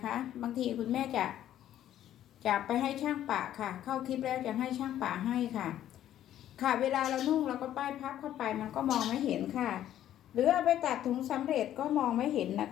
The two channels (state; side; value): quieter; right; 11.8 dB